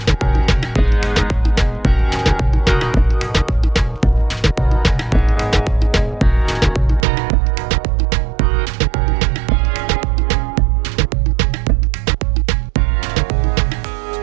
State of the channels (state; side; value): drops out; left; at 7.1 s